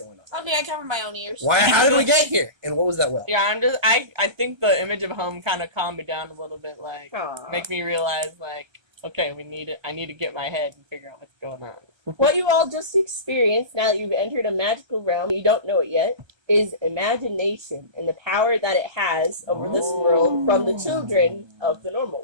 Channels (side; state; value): left; late; 1.3 ms